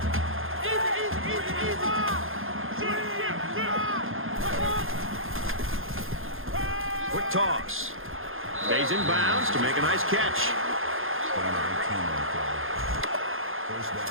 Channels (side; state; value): left; late; 0.60 ms